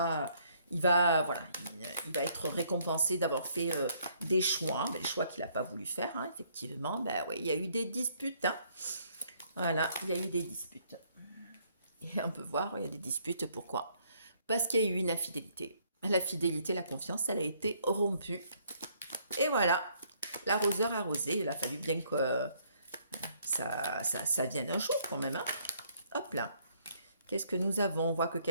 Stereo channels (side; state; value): both; inverted; correlation -0.67